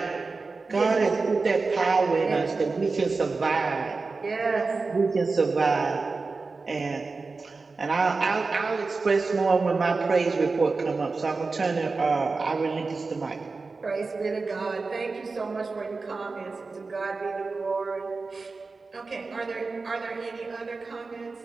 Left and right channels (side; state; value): left; quieter; 4.1 dB